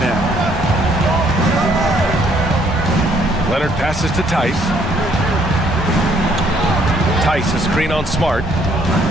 Leonard passes to Tice. Tice, a screen on Smart.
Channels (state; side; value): normal; both; correlation 0.66